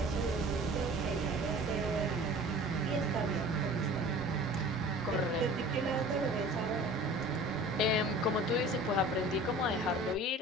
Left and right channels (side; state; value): both; normal; correlation 0.43